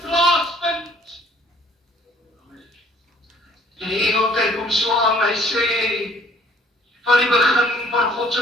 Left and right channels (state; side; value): normal; both; correlation 0.58